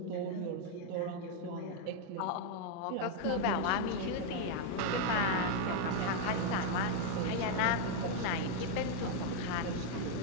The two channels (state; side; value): different; both; correlation 0.00